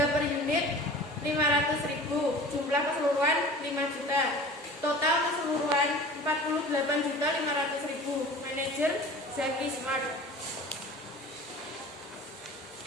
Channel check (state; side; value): normal; both; correlation 0.41